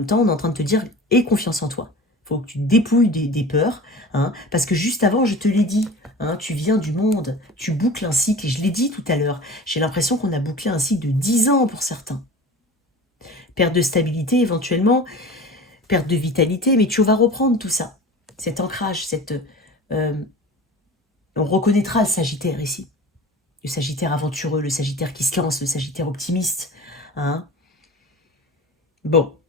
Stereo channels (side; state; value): both; normal; correlation 0.37